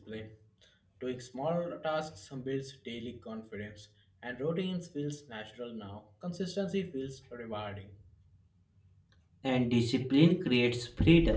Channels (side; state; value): both; identical; correlation 1.00